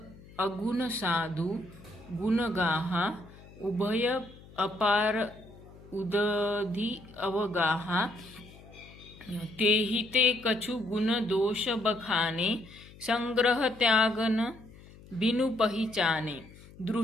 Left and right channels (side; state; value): left; noise; hum, 21 dB below the sound